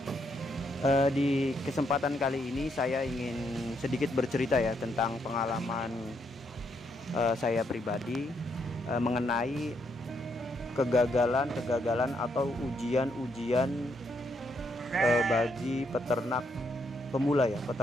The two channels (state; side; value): normal; both; correlation 0.76